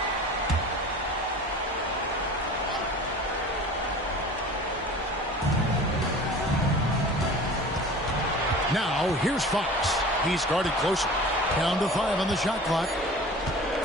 Now, here's Fox. He's guarded closer. Down to 5 on the shot clock.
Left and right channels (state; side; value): normal; both; correlation 0.40